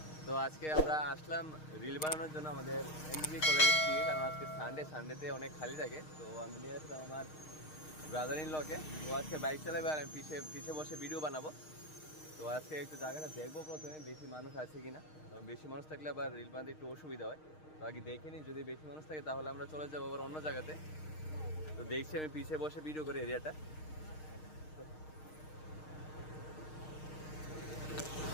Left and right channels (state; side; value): late; right; 6.5 ms